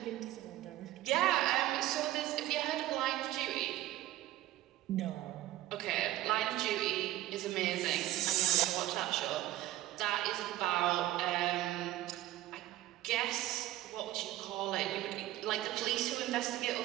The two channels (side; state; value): left; quieter; 15.1 dB